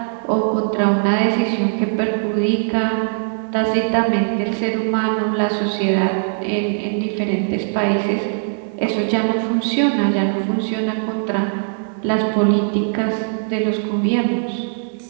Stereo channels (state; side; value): silent; left; 66 dB below the other